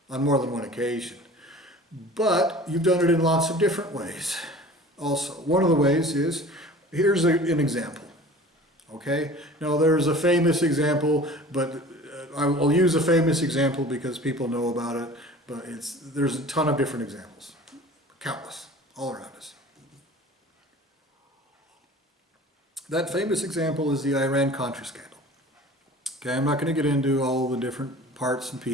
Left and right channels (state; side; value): normal; both; correlation 0.43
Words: on more than one occasion. But you've done it in lots of different ways also. One of the ways is, here's an example, okay? Now there's a famous example, but I'll use a famous example because people know about it, but there's a ton of different examples, countless, all around us. That famous example is the Iran-Contra scandal. Okay, I'm not going to get into all the different parts and